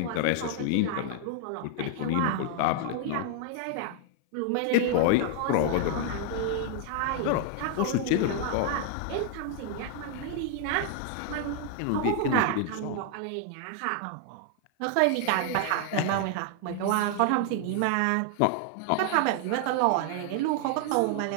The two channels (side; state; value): both; different; correlation 0.00